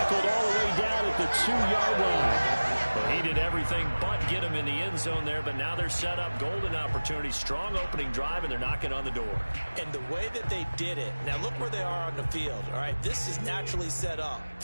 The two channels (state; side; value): inverted; both; correlation -1.00